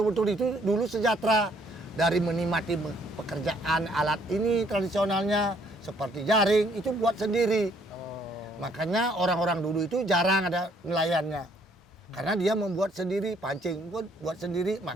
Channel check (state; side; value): normal; both; correlation 0.65